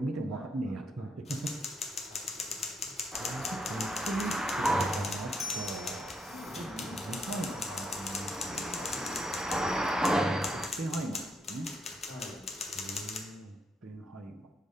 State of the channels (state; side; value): normal; both; correlation 0.77